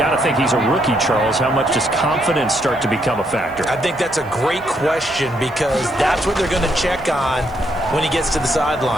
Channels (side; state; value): right; noise; hiss, 29 dB below the sound